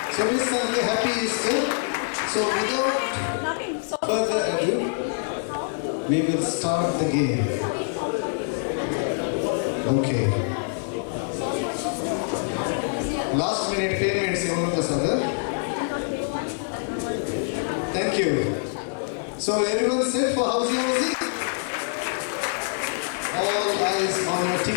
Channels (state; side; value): silent; right; 62 dB below the other